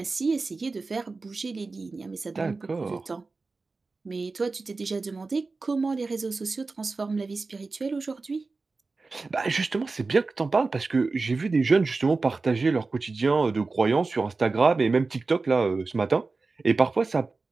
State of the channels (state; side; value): quieter; left; 3.9 dB